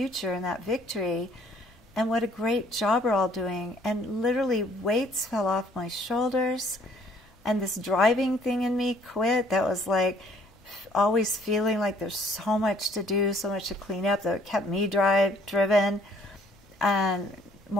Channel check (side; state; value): both; normal; correlation 0.61